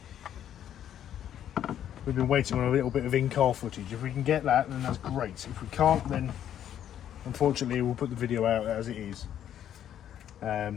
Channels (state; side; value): quieter; right; 10.4 dB